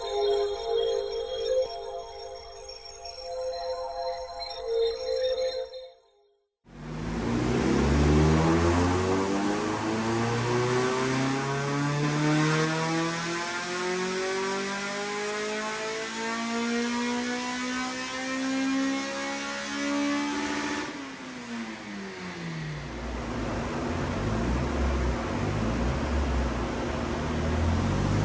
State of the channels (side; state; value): both; identical; correlation 1.00